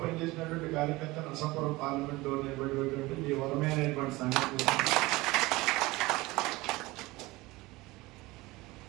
పనిచేసినటువంటి కార్యకర్త నరసాపురం పార్లమెంట్ లో నిలబడినటువంటి ఈ వరమైనటువంటి సంఘటన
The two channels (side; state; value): left; quieter; 20.9 dB